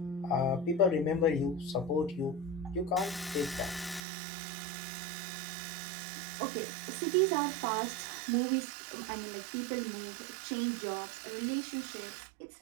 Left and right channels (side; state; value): left; drops out; at 4.0 s